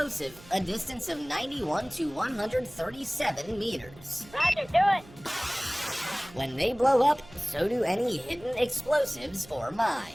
a distance of 91 to 137 meters. Roger, do it! When they blow up, so do any hidden explosives or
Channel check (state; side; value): noise; right; hum, 21 dB below the sound